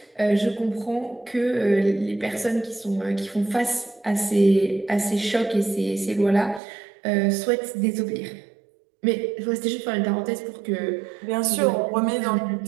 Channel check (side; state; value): left; drops out; at 6.6 s